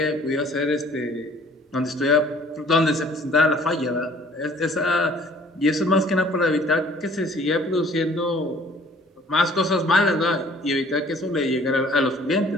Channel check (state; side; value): normal; both; correlation 0.55